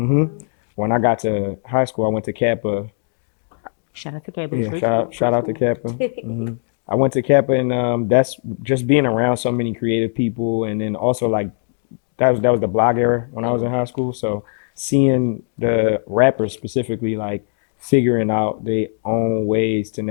when I got to high school, I went to Kappa. Shout out to Kappa. Yeah, Great school. shout out to Kappa. I went to Kappa, and that's just being around so many creative people, and then also like that was the blog era when I was in high school. So seeing the rappers specifically like figuring out their own ways to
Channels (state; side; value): silent; right; digital silence